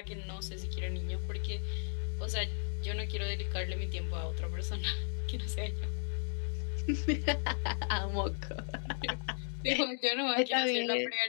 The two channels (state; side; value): silent; right; digital silence